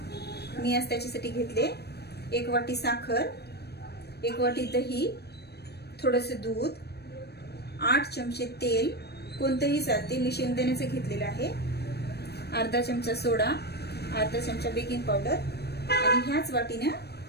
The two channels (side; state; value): right; late; 0.47 ms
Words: मी आज त्याच्यासाठी घेतले 1 वाटी साखर, 1 वाटी दही, थोडेसे दूध, 8 चमचे तेल, कोणतेही चालते, मी शेंगदाण्याचे घेतलेले आहे, अर्धा चमचा सोडा, अर्धा चमचा बेकिंग पावडर आणि ह्याच वाटीने,